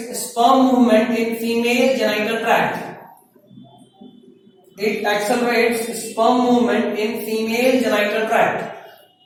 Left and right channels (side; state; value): both; identical; correlation 1.00